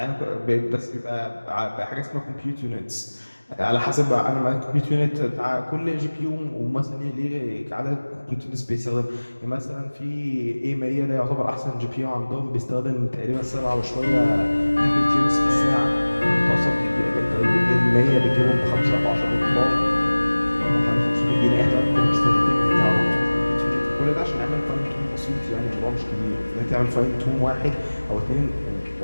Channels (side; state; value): both; inverted; correlation -1.00